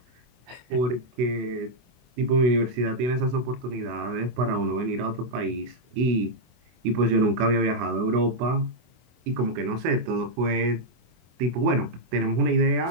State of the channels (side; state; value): left; late; 24 ms